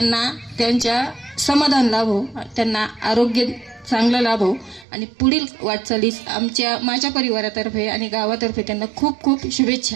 त्यांच्या समाधान लाभो, त्यांना आरोग्य चांगलं लाभो आणि पुढील वाटचालीस माझ्या परिवारातर्फे आणि गावातर्फे त्यांना खूप खूप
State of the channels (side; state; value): left; drops out; at 4.9 s